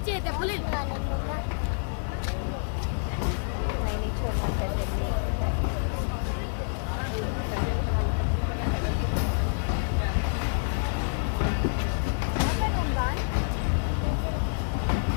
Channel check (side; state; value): right; silent; digital silence